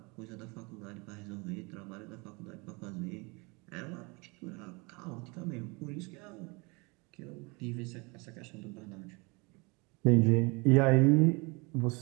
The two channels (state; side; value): quieter; left; 28.3 dB